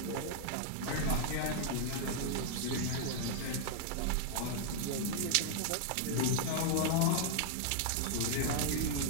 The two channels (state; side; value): different; both; correlation -0.01